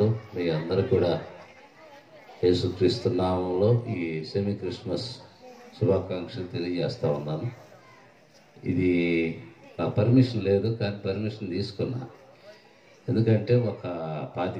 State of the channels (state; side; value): identical; both; correlation 1.00